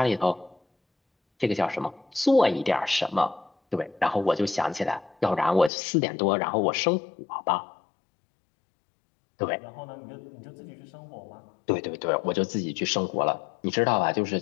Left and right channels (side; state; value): right; drops out; at 5.7 s